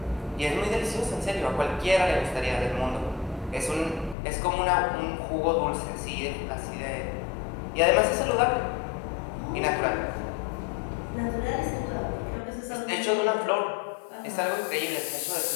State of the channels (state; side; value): drops out; right; at 4.2 s